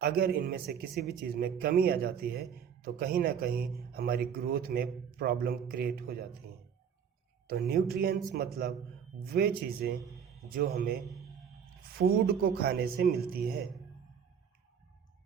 अगर इनमें से किसी भी चीज़ में कमी आ जाती है तो कहीं ना कहीं हमारी ग्रोथ में प्रॉब्लम क्रिएट हो जाती हैं। तो न्यूट्रिएंट्स मतलब वे चीज़ें जो हमें फूड को खाने से मिलती है।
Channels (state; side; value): quieter; left; 7.7 dB